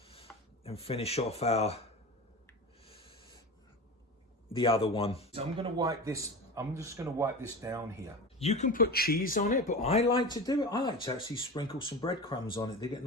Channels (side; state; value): both; normal; correlation 0.28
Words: and finish off the other one. So I'm gonna wipe this, I'm just gonna wipe this down here. You can put cheese on it, but I like to do it. I like to actually sprinkle some breadcrumbs on it. They get